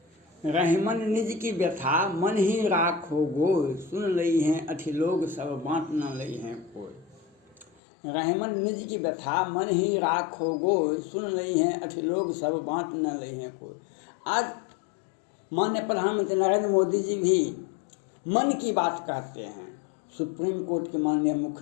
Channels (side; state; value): right; drops out; at 7.7 s